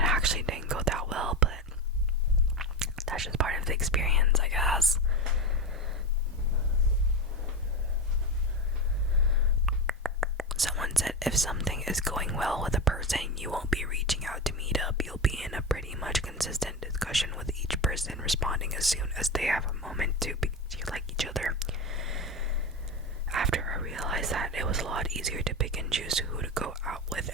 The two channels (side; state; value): both; normal; correlation 0.20